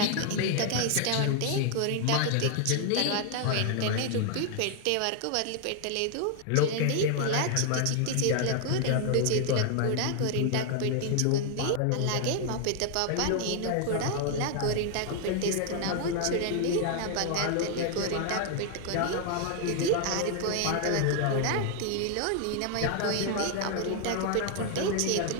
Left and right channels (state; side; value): different; both; correlation 0.00